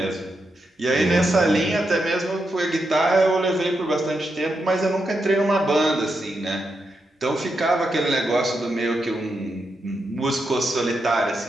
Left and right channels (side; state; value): both; normal; correlation 0.85